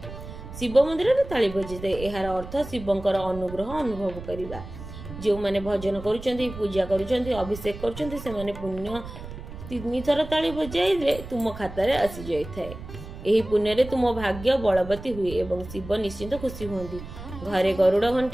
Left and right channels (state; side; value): noise; right; rumble, 12 dB below the sound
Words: ଶିବ ମନ୍ଦିରରେ ତାଳି ବଜିଥାଏ। ଏହାର ଅର୍ଥ ଶିବଙ୍କର ଅନୁଗ୍ରହ ଅନୁଭବ କରିବା। ଯେଉଁମାନେ ଭଜନ କରୁଛନ୍ତି, ପୂଜା କରୁଛନ୍ତି, ଅଭିଷେକ କରୁଛନ୍ତି ସେମାନେ ପୁଣ୍ୟ 3 ଥର ତାଳି ବଜାଇଲେ ତୁମ ଖାତାରେ ଆସିଯାଇଥାଏ। ଏହି ପୁଣ୍ୟରେ ତୁମ ଭାଗ୍ୟ ବଳବତୀ ହୁଏ ଏବଂ ଶିବ ନିଶ୍ଚିନ୍ତ ଖୁସି ହୁଅନ୍ତି। ଘରେ ଗରୁଡ଼